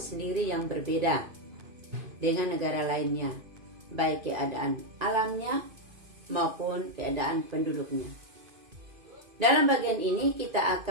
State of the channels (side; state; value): left; late; 2.5 ms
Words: yang berbeda dengan negara lainnya, baik keadaan alamnya maupun keadaan penduduknya. Dalam bagian ini kita